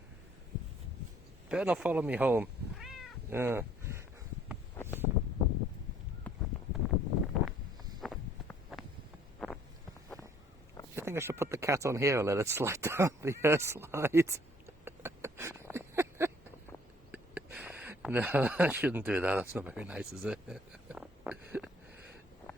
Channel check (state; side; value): normal; both; correlation 0.59